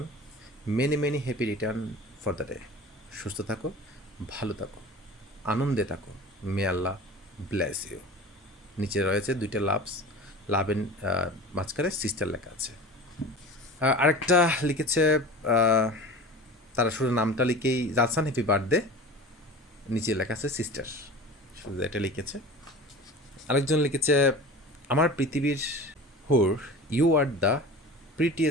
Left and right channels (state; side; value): normal; both; correlation 0.36